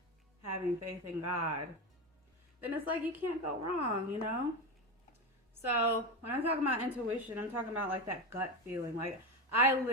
having faith in God, then it's like you can't go wrong, you know? So when I'm talking about intuition, I'm talking about like that gut feeling. Like I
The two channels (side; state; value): both; normal; correlation 0.17